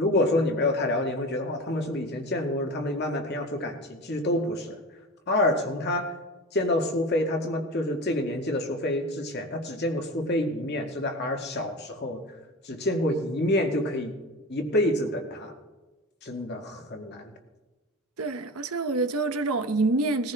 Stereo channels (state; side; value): normal; both; correlation 0.31